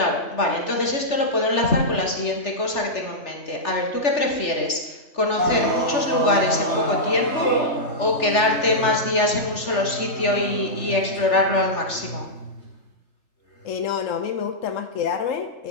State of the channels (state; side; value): late; right; 3.4 ms